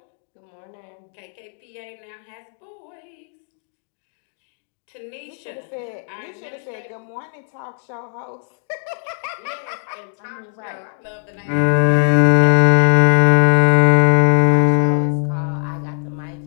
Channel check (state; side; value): silent; right; digital silence